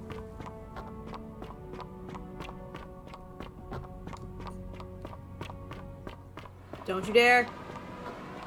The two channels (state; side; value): identical; both; correlation 1.00